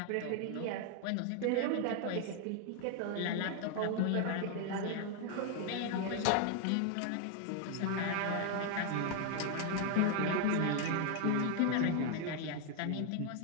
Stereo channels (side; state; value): both; different; correlation 0.01